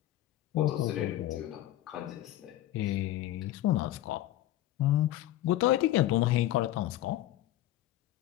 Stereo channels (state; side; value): quieter; right; 14.2 dB